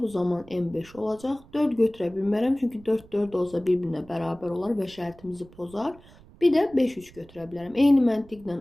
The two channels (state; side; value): noise; right; rumble, 24 dB below the sound